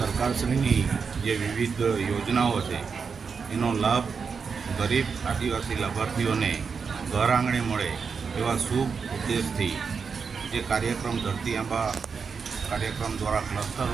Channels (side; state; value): left; quieter; 5.6 dB